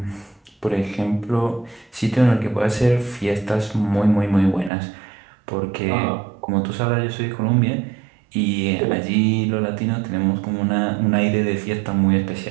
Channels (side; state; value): left; drops out; at 4.7 s